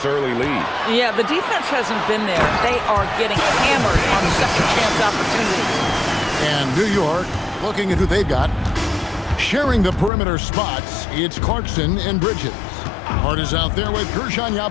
early lead. Yeah, the defense hasn't been there. They are getting hammered on second chance opportunities. And New York, looking at who they've got. Sharing the perimeter spots, it's Clarkson and Bridges. Hart is out there with Gershon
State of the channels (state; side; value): drops out; right; at 10.1 s